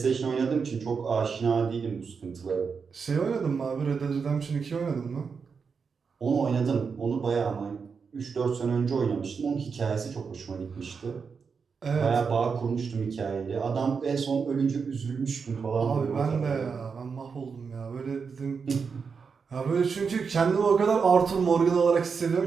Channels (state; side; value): quieter; left; 5.6 dB